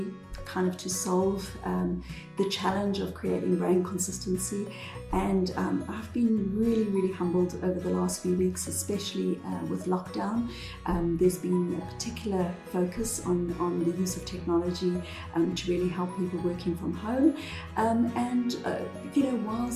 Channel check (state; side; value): identical; both; correlation 1.00